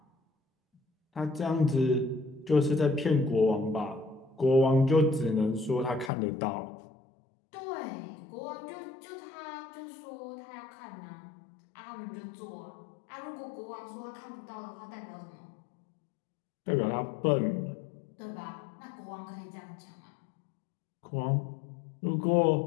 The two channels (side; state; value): right; drops out; at 6.1 s